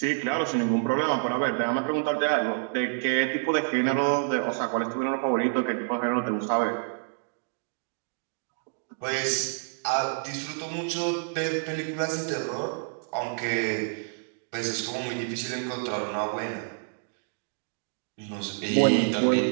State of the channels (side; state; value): left; silent; digital silence